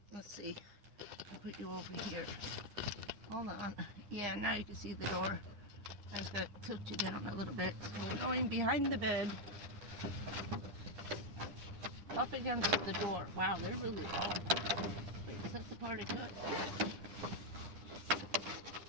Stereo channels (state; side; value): late; left; 9.9 ms